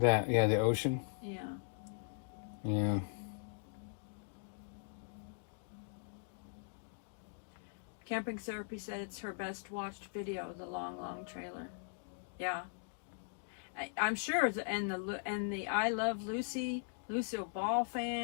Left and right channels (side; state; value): right; silent; digital silence